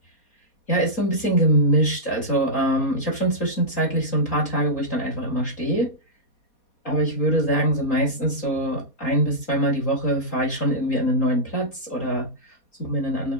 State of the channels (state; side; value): late; right; 4.2 ms